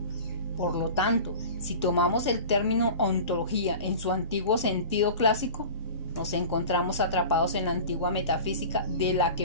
Por lo tanto, si tomamos el término ontología en su antiguo sentido clásico, nos encontramos atrapados en la antigua metafísica de la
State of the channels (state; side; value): inverted; both; correlation -0.37